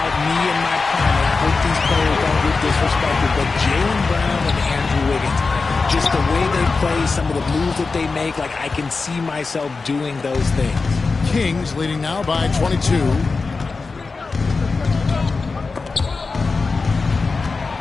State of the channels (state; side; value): quieter; right; 4.2 dB